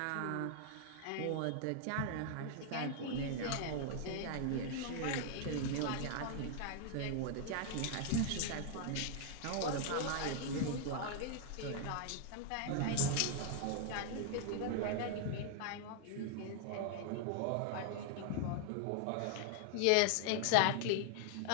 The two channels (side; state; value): both; different; correlation 0.00